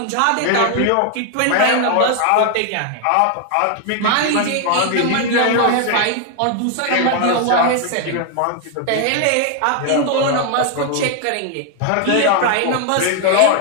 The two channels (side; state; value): both; different; correlation 0.00